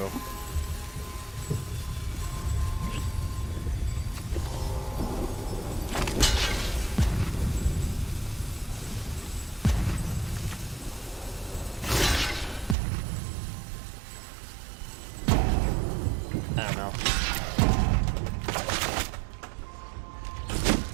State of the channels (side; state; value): left; drops out; at 12.8 s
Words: I don't know.